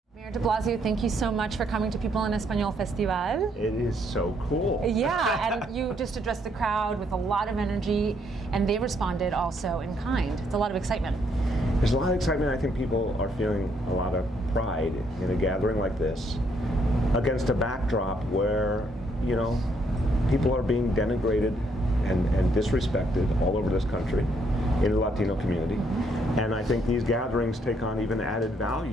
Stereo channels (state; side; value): normal; both; correlation 0.71